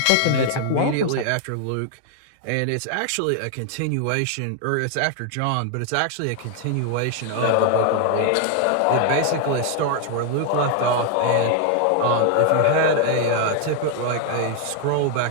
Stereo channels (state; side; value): different; both; correlation 0.00